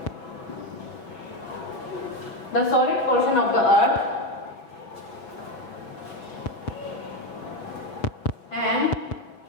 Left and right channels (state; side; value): late; right; 6.5 ms